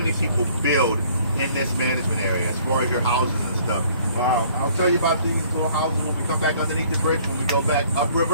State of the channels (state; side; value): inverted; both; correlation -0.58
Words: people build in this management area as far as your houses and stuff. Wow, I'll tell you about these little houses when we come back underneath the bridge, when we go back